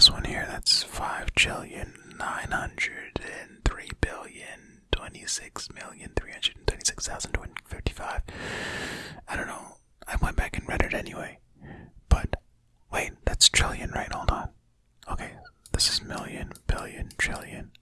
one here that's 5,903,026,326,255. I don't know. I went back and read it anyway. But wait, that's trillion, right? Hold on. Okay, this is million, billion, trillion.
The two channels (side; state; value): both; identical; correlation 1.00